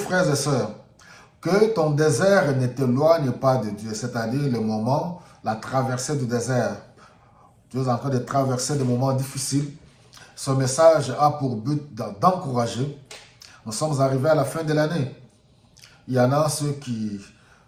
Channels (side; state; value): both; identical; correlation 1.00